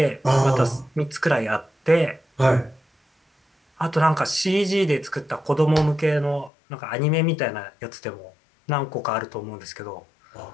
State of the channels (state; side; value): drops out; right; at 6.5 s